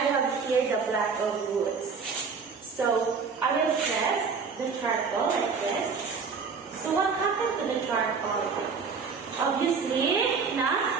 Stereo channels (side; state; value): left; quieter; 5.4 dB